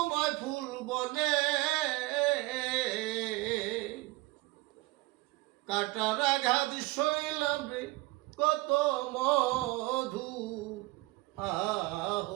ফুল বনে। কাটার আঘাত সইলাম রে কত মধু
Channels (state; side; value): quieter; left; 21.0 dB